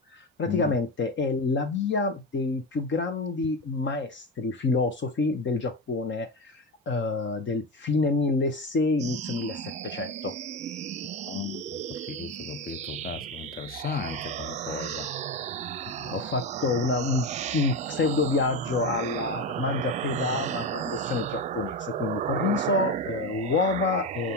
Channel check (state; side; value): normal; both; correlation 0.18